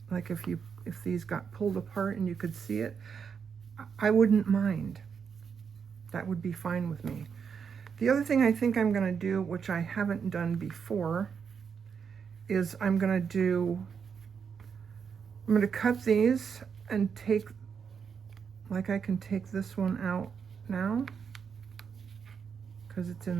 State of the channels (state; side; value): quieter; left; 6.6 dB